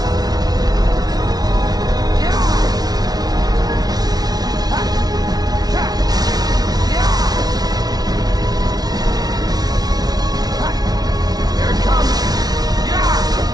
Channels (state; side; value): late; left; 0.19 ms